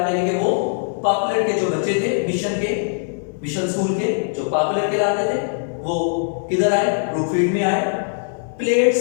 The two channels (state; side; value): silent; right; 65 dB below the other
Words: یعنی کہ وہ پاپولر کے جو بچے تھے مشن اسکول کے جو پاپولر کہلاتے تھے وہ کدھر آئے؟ بلو فیلڈ میں آئے. پلیڈ